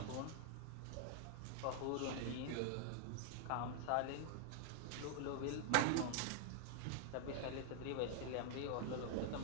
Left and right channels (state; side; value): different; both; correlation 0.00